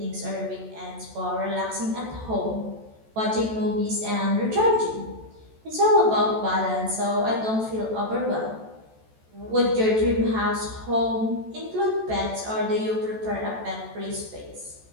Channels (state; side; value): late; left; 14 ms